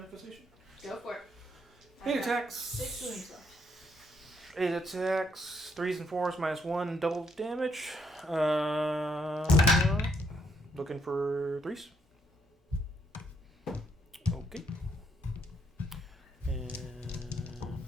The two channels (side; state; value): both; normal; correlation 0.73